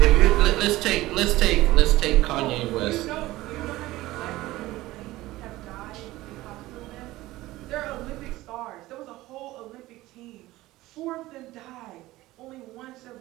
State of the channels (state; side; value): quieter; left; 17.6 dB